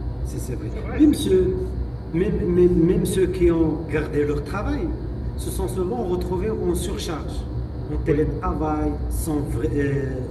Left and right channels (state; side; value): identical; both; correlation 1.00